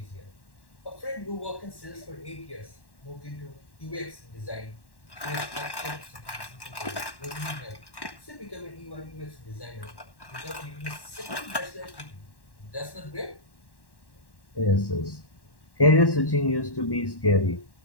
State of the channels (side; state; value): right; late; 1.1 ms